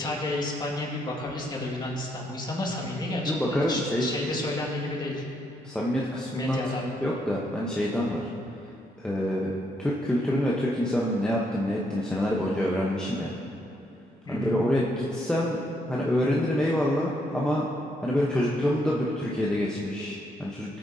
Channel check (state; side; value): normal; both; correlation 0.75